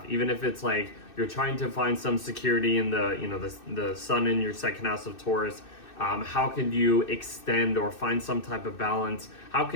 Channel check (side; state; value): right; late; 2.6 ms